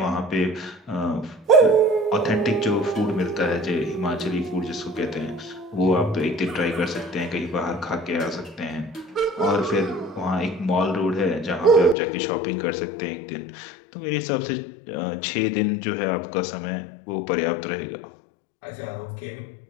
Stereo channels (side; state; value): right; drops out; at 12.0 s